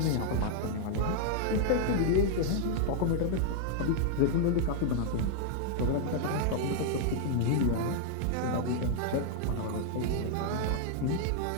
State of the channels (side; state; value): both; different; correlation -0.01